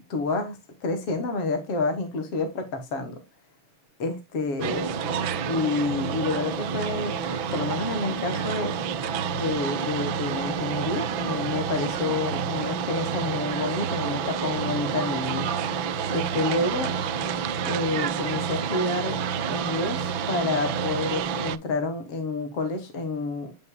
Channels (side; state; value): right; late; 6.1 ms